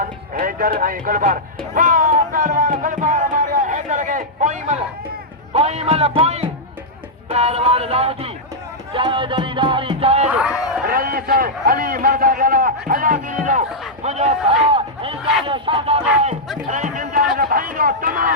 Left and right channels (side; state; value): both; normal; correlation -0.07